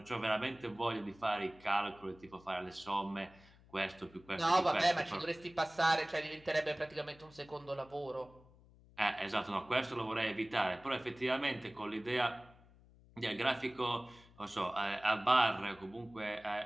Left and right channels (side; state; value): left; noise; hum, 25 dB below the sound